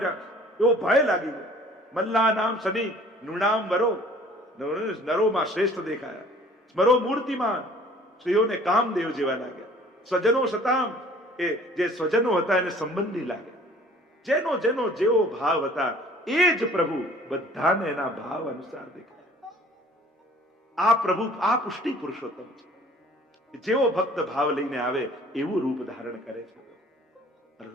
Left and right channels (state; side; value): normal; both; correlation 0.52